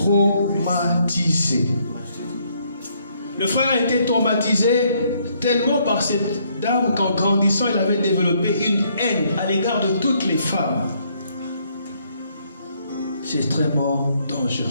Le frère a été traumatisé tellement par cette dame qu'en grandissant, il avait développé une haine à l'égard de toutes les femmes. C'est extrêmement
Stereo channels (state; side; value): inverted; both; correlation -0.69